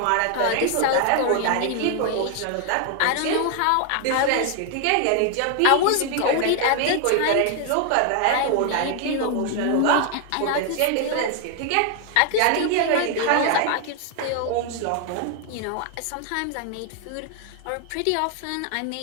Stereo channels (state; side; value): different; both; correlation 0.00